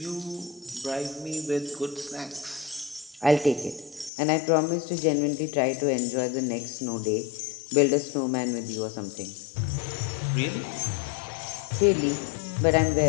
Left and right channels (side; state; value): right; drops out; at 4.1 s